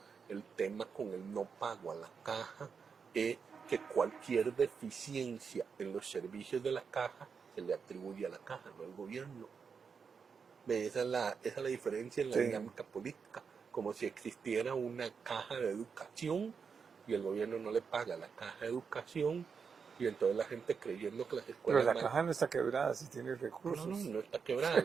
el tema con el no pago a la caja es que cualquier deficiencia en los servicios de la caja se le atribuye a la caja, no al gobierno. Esa es la diferencia en la Sí. dinámica política, como si existiera una caja de educación y el gobierno no le paga la caja de educación y entonces la gente creyendo que las Pero escuelas la caja no está quebrada si tiene recursos. no está quebrada,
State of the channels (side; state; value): left; quieter; 5.9 dB